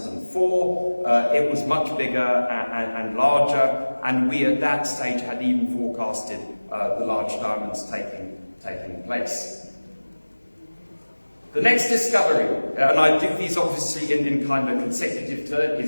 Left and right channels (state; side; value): inverted; both; correlation -1.00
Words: it was much bigger and larger, and we at that stage had even forecasted the large diamonds taking place. The next discovery, and I do these obviously in kind of consecutive turn,